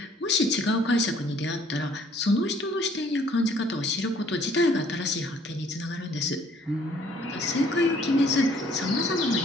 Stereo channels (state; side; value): normal; both; correlation 0.60